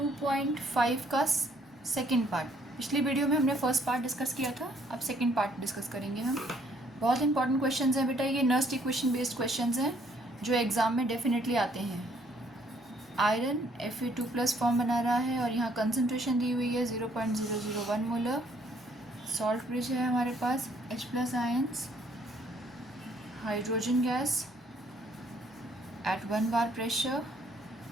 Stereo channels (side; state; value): both; normal; correlation 0.65